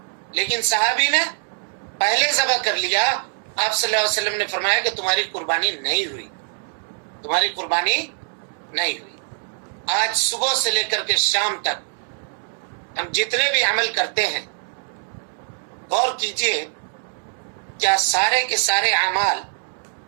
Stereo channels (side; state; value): left; silent; digital silence